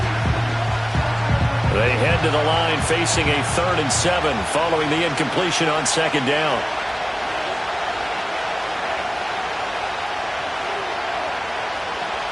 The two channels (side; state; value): both; identical; correlation 1.00